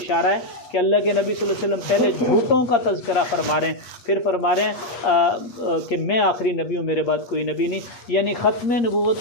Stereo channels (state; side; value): late; right; 8.3 ms